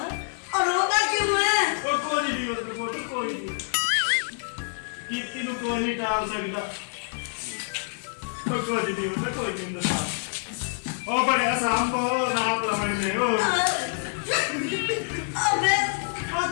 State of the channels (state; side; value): silent; right; 61 dB below the other